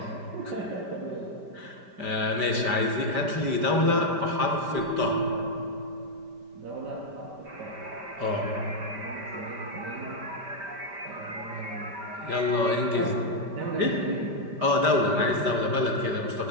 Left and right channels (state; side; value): late; left; 5.1 ms